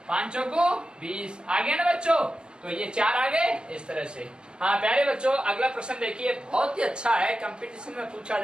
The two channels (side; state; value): left; late; 0.050 ms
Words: 5 को 20 आ गया ना बच्चों, तो ये 4 आ गए इस तरह से। हाँ प्यारे बच्चों, अगला प्रश्न देखिए, बहुत ही अच्छा है, कंपटीशन में पूछा